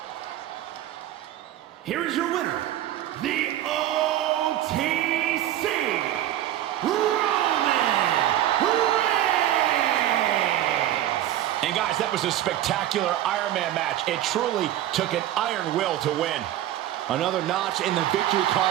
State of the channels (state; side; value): quieter; left; 12.9 dB